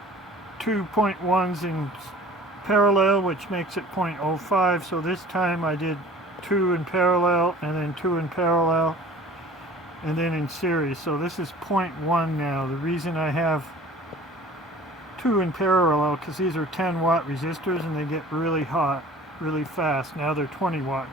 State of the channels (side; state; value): both; normal; correlation 0.46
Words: 2.1s in parallel, which makes it 0.05. So this time I did 2 in parallel and then 2 in parallel and then in series. So this is 0.1 now. The reason I have 2 in parallel because these are 10 watt resistors and they get really hot really fast. Now they're 20 watt